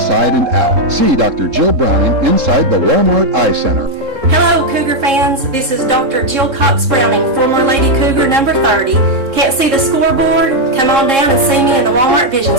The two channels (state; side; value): late; left; 3.7 ms